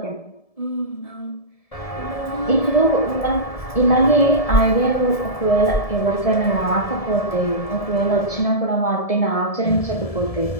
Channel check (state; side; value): late; right; 1.7 ms